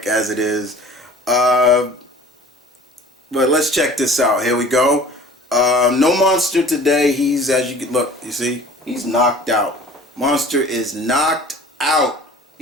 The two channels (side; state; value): both; normal; correlation 0.45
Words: as it is. But let's check this out. Here we go. No Monster today. He's, as you can look, you see, he's knocked out. Monster is knocked out.